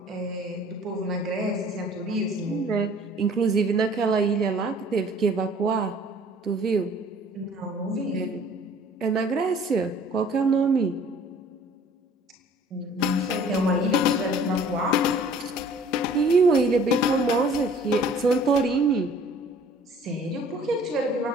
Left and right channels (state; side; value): normal; both; correlation 0.52